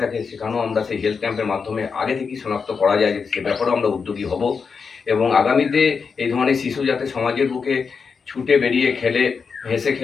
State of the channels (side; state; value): right; quieter; 5.6 dB